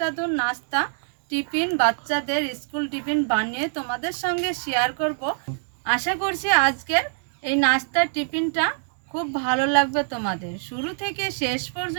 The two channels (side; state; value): left; silent; digital silence